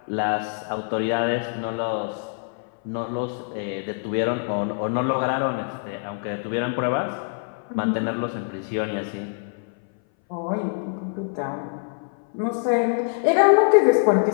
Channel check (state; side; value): silent; right; 59 dB below the other